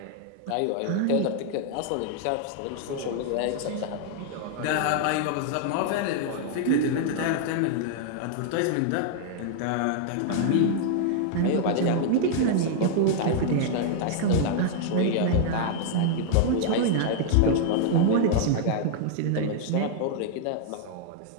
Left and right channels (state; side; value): different; both; correlation 0.00